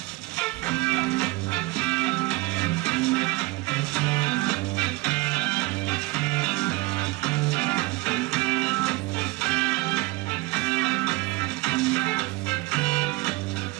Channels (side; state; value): left; quieter; 21.8 dB